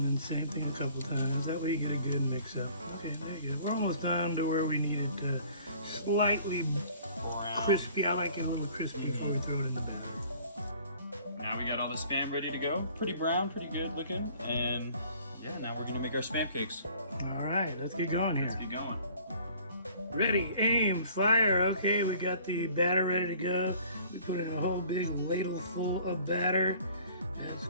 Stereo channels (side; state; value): both; inverted; correlation -0.53